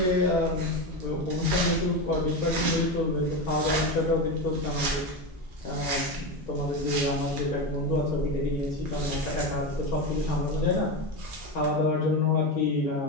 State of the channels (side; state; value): both; normal; correlation 0.18